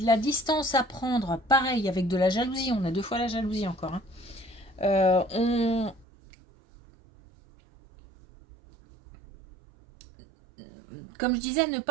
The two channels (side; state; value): left; drops out; at 6.1 s